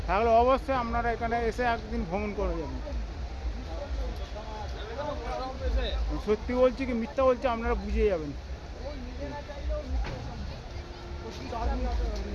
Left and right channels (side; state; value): both; identical; correlation 1.00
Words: তাহলে অবশ্যই আপনারা এখানে এসে একদিন ভ্রমণ করে যাবেন। সত্যি বলছি কি মিথ্যা বলছি আপনারা বুঝে যাবেন।